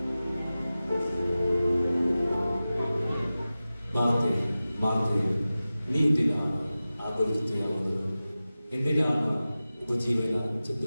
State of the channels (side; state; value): both; inverted; correlation -0.96